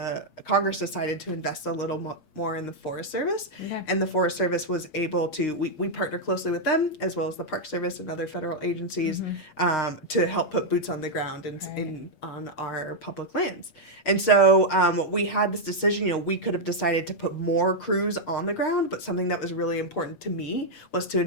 Congress decided to invest a little more in the Forest Service. And the Forest Service was able to, we partner closely with them as well as the Park Service and other federal agencies to help put boots on the ground on our public lands. And so we had this decision, we could have decided to put more crews on the ground, but something that was really important to me was to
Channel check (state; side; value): late; right; 8.5 ms